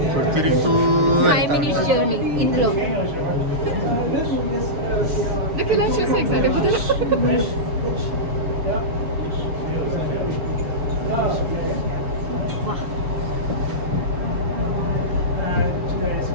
తిరుగుతూ 5 minutes జర్నీ ఇందులో. నాకు ఇలా చూసి ఎక్సైట్ అయిపోతుంది.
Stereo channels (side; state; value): left; late; 7.1 ms